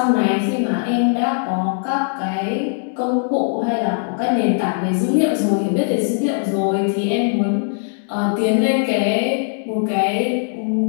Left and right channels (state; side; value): silent; right; 66 dB below the other